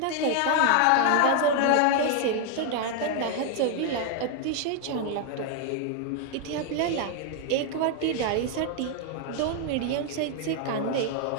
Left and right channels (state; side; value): different; both; correlation 0.00